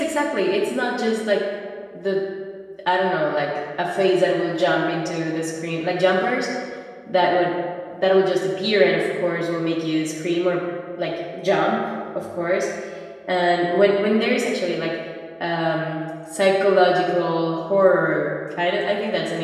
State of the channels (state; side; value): identical; both; correlation 1.00